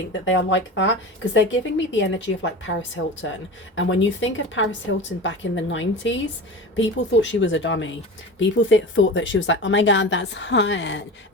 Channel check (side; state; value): both; normal; correlation 0.31